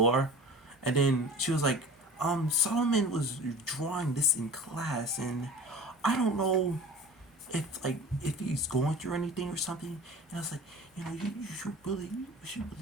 And then she was like, Solomon was drawing this in class, and I don't know if he's going through anything or something. And I was like, you should really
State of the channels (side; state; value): both; normal; correlation 0.39